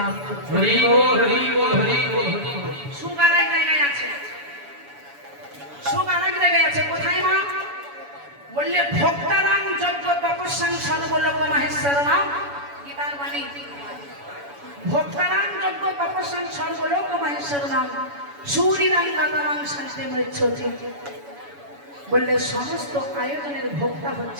করতে পারবে। হরি বল, হরি বল, হরি বল, হরি বল। সুখ আর এক জায়গায় আছে, সুখ আর এক জায়গায় আছে। কোথায় মা? বললে ভক্তারাং যজ্ঞ তপস্যাং সর্বলোক মহেশ্বর নাম, গীতার বাণী। ভক্তারাং যজ্ঞ তপস্যাং সর্বলোক মহেশ্বর নাম, সূরিরাং গাতারাং শান্তি মৃচ্ছতি। বললে সমস্ত আয়োজনের ভোক্তা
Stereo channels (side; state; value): left; late; 7.0 ms